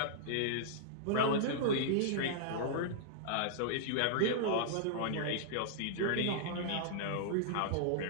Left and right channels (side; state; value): both; different; correlation -0.02